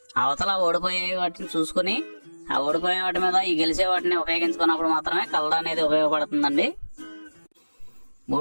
అవతల ఓడిపోయే వాటిని చూసుకుని ఆ ఓడిపోయే వాటి మీద ఈ గెలిచే వాటిని ఉపయోగించుకున్నప్పుడు మాత్రమే కలర్ అనేది ఉపయోగపడుతుందండి.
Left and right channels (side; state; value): both; inverted; correlation -1.00